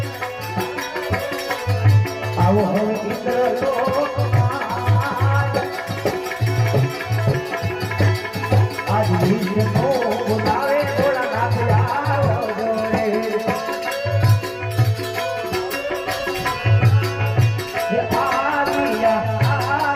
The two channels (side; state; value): both; identical; correlation 1.00